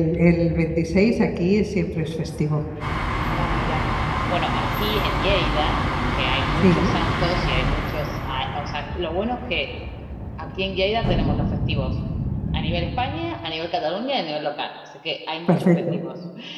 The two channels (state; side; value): identical; both; correlation 1.00